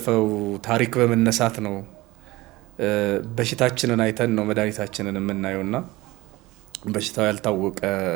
ታሪክ በመነሳት ነው በሽታችንን አይተን ነው መድኃኒታችንን የምናየውና በሽታው ያልታወቀ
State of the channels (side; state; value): left; quieter; 19.9 dB